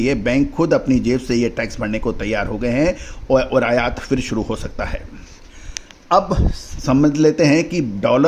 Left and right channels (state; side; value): identical; both; correlation 1.00